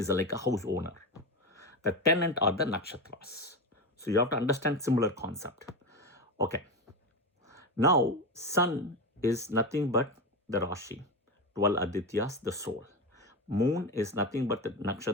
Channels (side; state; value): both; normal; correlation 0.18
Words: like a house owner. The tenant are the nakshatras. So you have to understand similar concept. Okay. Now, sun is nothing but the Rashi, 12 Adityas, the soul. Moon is nothing but the